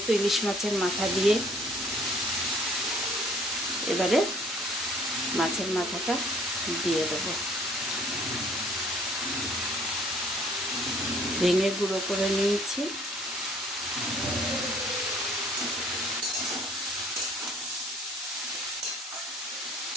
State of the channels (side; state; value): both; normal; correlation 0.57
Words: ইলিশ মাছের মাথা দিয়ে, এবারে মাছের মাথাটা দিয়ে দেবো। ভেঙে গুঁড়ো করে নিয়েছি।